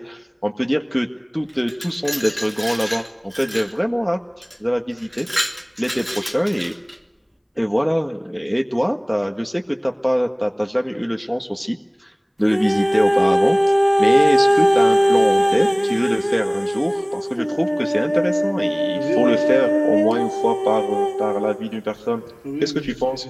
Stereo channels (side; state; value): both; identical; correlation 1.00